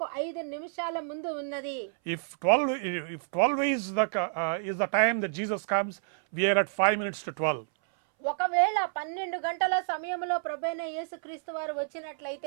5 నిమిషాల ముందు ఉన్నది. If 12 is the time that Jesus comes, we are at 5 minutes to 12. ఒకవేళ 12 గంటల సమయంలో ప్రభువైన యేసుక్రీస్తు వారు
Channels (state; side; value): silent; left; 58 dB below the other